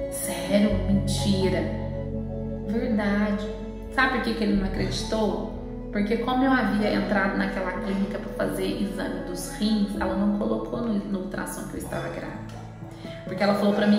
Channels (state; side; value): identical; both; correlation 1.00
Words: Sério? Mentira. Verdade. Sabe por que ele não acreditou? Porque como eu havia entrado naquela clínica para fazer exame dos rins, ela não colocou no ultrassom que eu estava grávida. Porque ela falou para